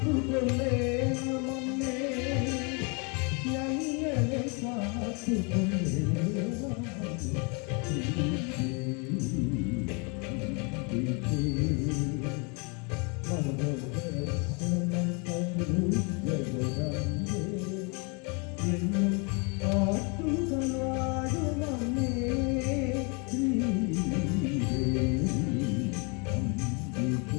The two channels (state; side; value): quieter; right; 33.3 dB